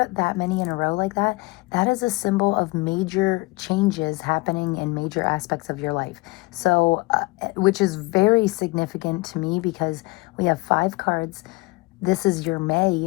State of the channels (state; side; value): quieter; right; 23.9 dB